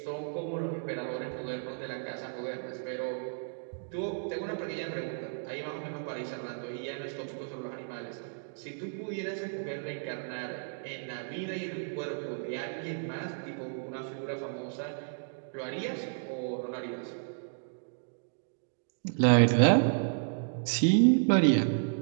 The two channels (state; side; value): silent; left; digital silence